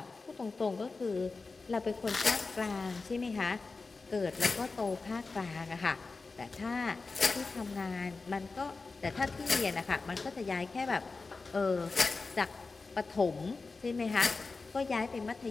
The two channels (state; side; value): quieter; right; 4.0 dB